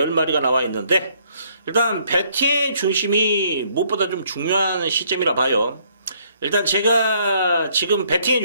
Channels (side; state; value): both; inverted; correlation -0.67